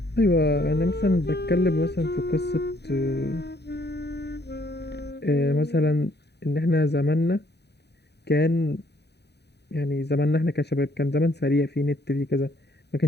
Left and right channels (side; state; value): right; late; 0.48 ms